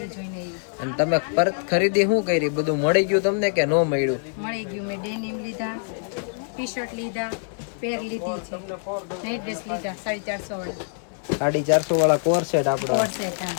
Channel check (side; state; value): right; silent; digital silence